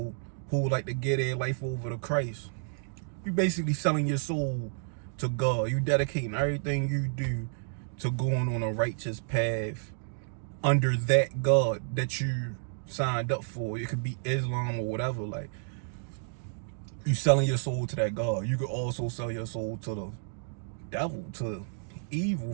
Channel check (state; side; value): silent; left; digital silence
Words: who would like to get their life over to Christ? You're basically selling your soul to God. You dedicating everything you do to going on a righteous path under that God that you signed up for. It could be Islam or whatever. Like, you selling your soul to that God. You could also sell your soul to the devil, to evil,